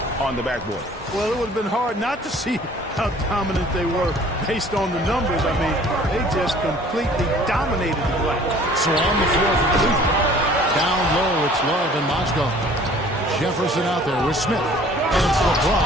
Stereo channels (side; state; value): both; normal; correlation 0.52